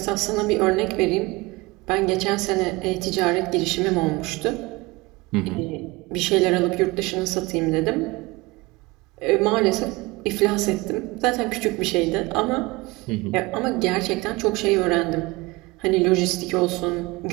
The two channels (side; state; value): left; quieter; 23.0 dB